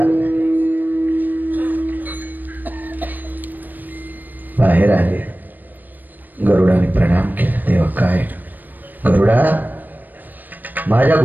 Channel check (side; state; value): left; late; 0.088 ms